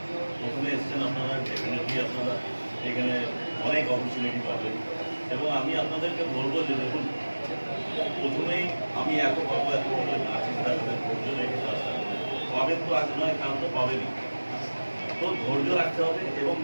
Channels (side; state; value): both; inverted; correlation -1.00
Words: প্রথমে এসছেন আপনারা, ডেফিনেটলি আপনারা এখানে অনেক অপরচুনিটি পাবেন। এবং আমি আপনাদেরকে বলবো যে দেখুন, প্রথমেই আমি এত পাবো এত করে না চিন্তা করেন, ধৈর্য রেখে কাজটা করবেন। পাবেন তো আজ নয়, কাল তো পাবেনই। তো ধৈর্য রাখতে হবে। এবং